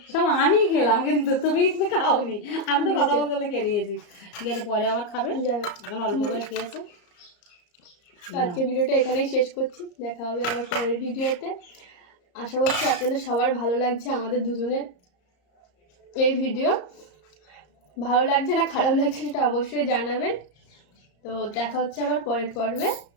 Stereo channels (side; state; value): right; late; 34 ms